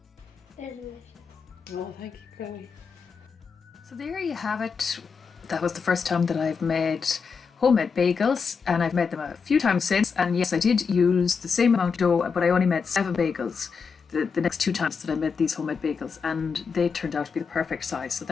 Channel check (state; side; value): quieter; right; 5.6 dB